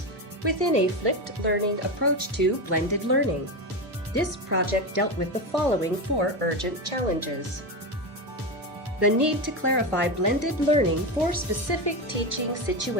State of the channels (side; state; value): both; normal; correlation 0.16